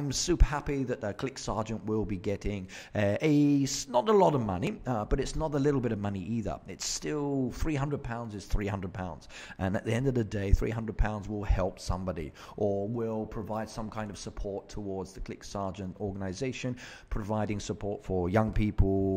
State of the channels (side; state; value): both; identical; correlation 1.00